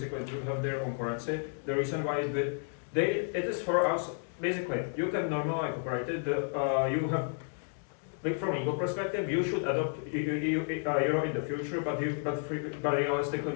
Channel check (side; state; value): right; silent; 57 dB below the other